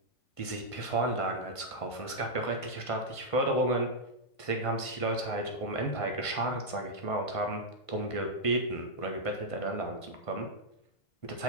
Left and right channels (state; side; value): late; right; 1.5 ms